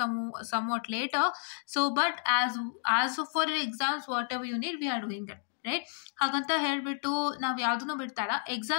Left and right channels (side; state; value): right; silent; 57 dB below the other